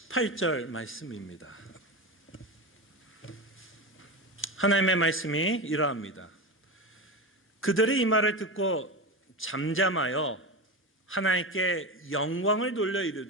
말씀입니다. 하나님의 말씀이 이러합니다. 그들이 이 말을 듣고 잠잠하여 하나님께 영광을 돌려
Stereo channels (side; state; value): both; normal; correlation 0.21